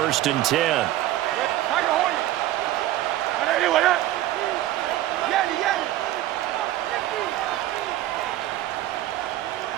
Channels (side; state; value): left; quieter; 14.4 dB